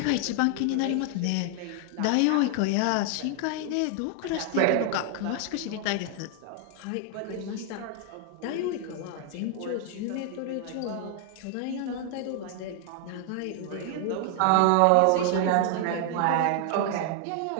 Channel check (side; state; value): both; different; correlation 0.00